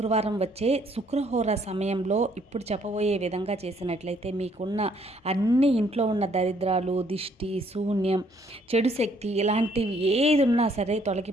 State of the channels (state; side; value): normal; both; correlation 0.66